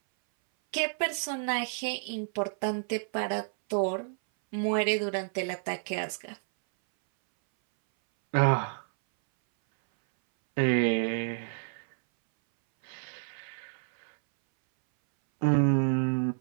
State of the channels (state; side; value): silent; left; 58 dB below the other